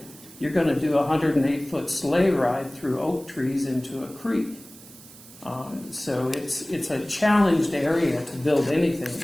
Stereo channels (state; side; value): noise; right; hiss, 20 dB below the sound